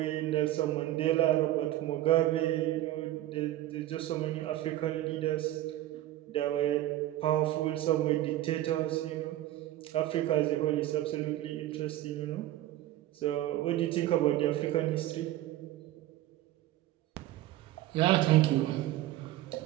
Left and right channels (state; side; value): quieter; left; 14.6 dB